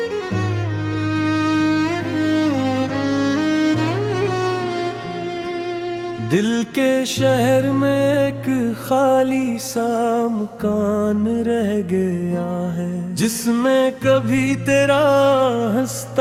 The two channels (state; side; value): identical; both; correlation 1.00